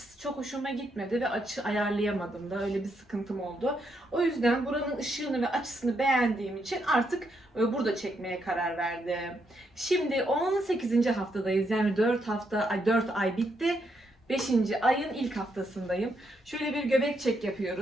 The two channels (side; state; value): both; normal; correlation 0.78